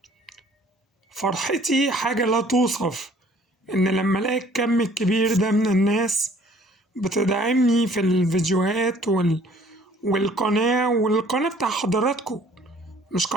فرحتي حاجة لا توصف، إن لما ألاقي الكم الكبير ده من الناس بتدعمني في الفيديوهات والقناة بتاع حضراتكم، مش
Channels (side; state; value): both; normal; correlation 0.56